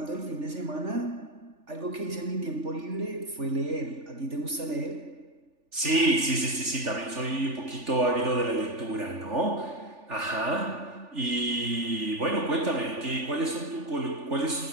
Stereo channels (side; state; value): left; late; 3.4 ms